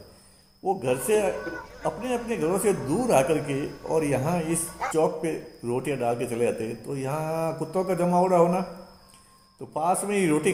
वो घर से अपने अपने घरों से दूर आकर के और यहाँ इस चौक पे रोटियां डाल के चले जाते। तो यहाँ कुत्तों का जमावड़ा होना, तो पास में ही रोटी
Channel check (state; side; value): identical; both; correlation 1.00